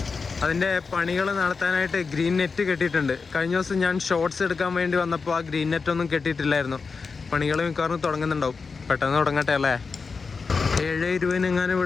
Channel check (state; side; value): quieter; right; 4.8 dB